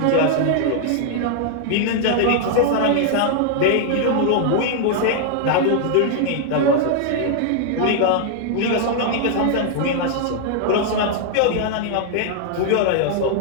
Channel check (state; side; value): different; both; correlation -0.01